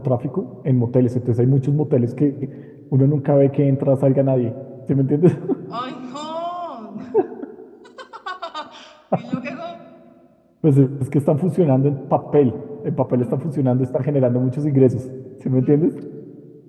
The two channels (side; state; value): both; identical; correlation 1.00